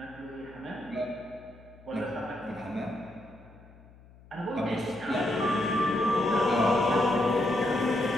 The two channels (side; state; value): left; noise; hum, 23 dB below the sound